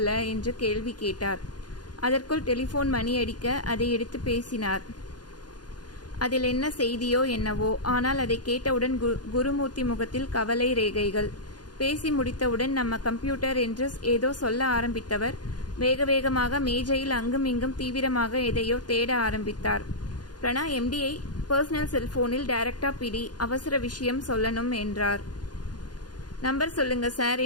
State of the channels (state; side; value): late; right; 0.69 ms